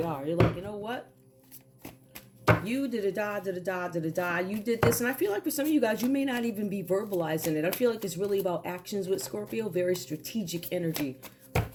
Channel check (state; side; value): identical; both; correlation 1.00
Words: are. You're like, you know what? You did-a-da. You did this. And I feel like for some of you guys, you may not even be verbalizing it. I feel like it's really about actions with Scorpio. Very strategic energy.